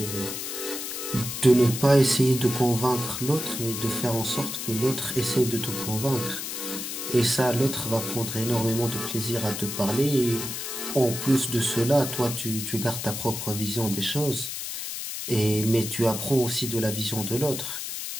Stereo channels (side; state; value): left; noise; hiss, 5 dB below the sound